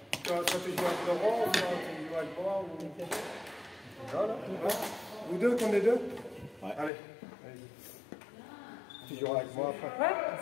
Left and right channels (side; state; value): right; drops out; at 6.9 s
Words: toi tu joues avec Laurent ou toi tu joues joues avec moi ou... Non, non. Vous deux, qu'on est deux? Ouais. Allez. Tu joueras avec moi après. Ouais,